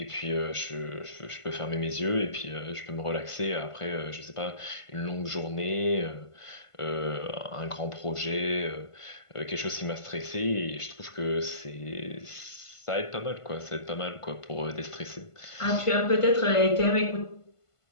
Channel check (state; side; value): late; right; 1.5 ms